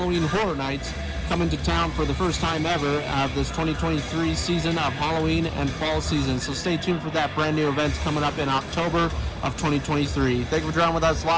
Horror Nights coming to town for the first time ever of this 2023 season of Halloween and fall season. So stay tuned for that brand new event coming up in October of 2023. Thank you for joining with us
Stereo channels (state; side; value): identical; both; correlation 1.00